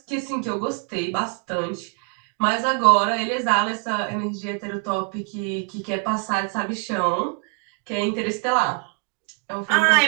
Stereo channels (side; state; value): left; quieter; 37.0 dB